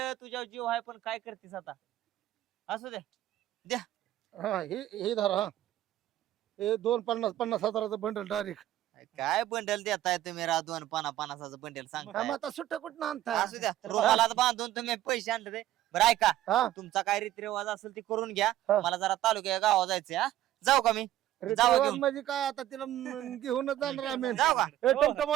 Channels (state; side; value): quieter; left; 13.5 dB